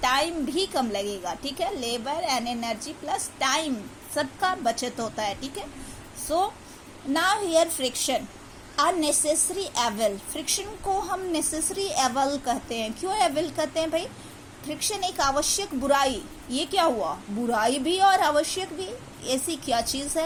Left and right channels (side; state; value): both; identical; correlation 1.00